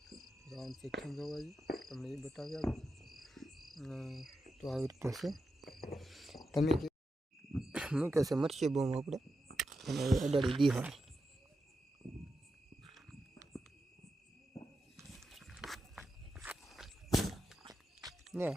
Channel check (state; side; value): normal; both; correlation 0.89